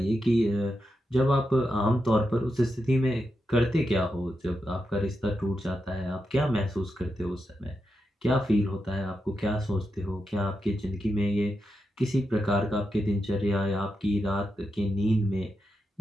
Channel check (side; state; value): both; normal; correlation 0.87